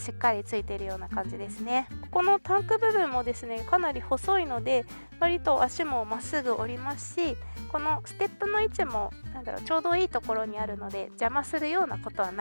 っかりついているような感じですね。ここのタンク部分もですねかなり細いので割と足もまっすぐ折りますし、このステップの位置もちょうどいいところにあるので邪魔するようなことは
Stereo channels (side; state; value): both; inverted; correlation -1.00